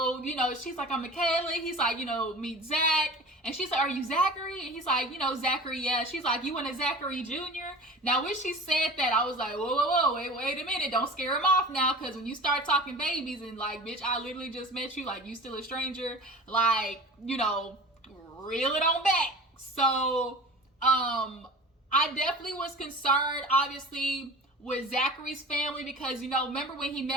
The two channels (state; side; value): normal; both; correlation 0.38